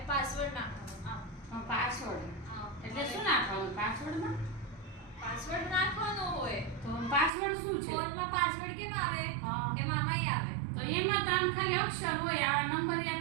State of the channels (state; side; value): drops out; left; at 7.3 s